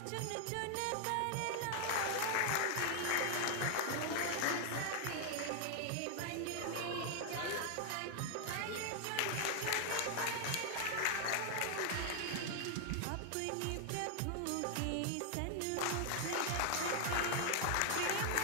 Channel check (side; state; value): both; different; correlation 0.00